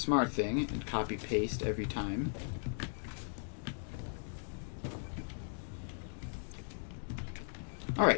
thing and copy paste every time.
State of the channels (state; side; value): silent; right; digital silence